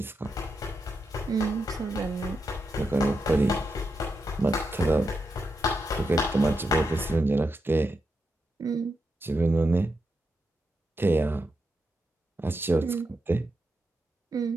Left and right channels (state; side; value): normal; both; correlation 0.85